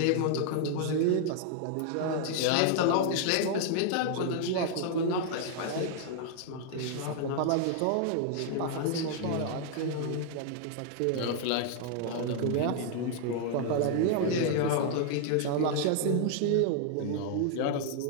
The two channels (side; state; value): both; different; correlation 0.00